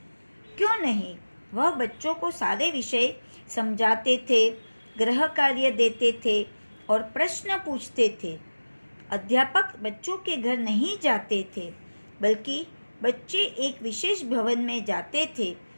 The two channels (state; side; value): inverted; both; correlation -1.00